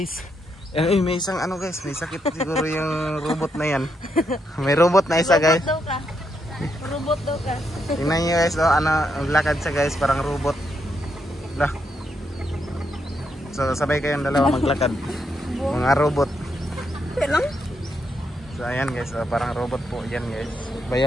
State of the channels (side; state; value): both; normal; correlation 0.79